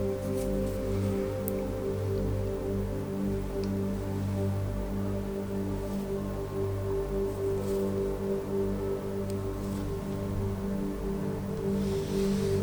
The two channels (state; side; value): identical; both; correlation 1.00